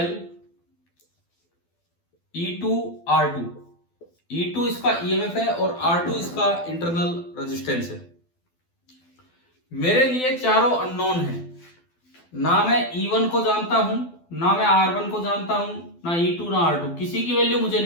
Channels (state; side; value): late; right; 12 ms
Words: E2 R2। E2 इसका ईएमएफ है और R2 इसका इंटरनल रेजिस्टेंस है। मेरे लिए चारों अननोन है, ना मैं E1 को जानता हूं, ना मैं R1 को जानता हूं, ना E2 ना R2, किसी की वैल्यू मुझे